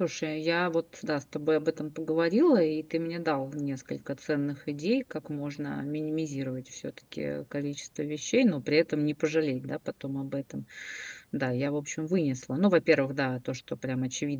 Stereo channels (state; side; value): identical; both; correlation 1.00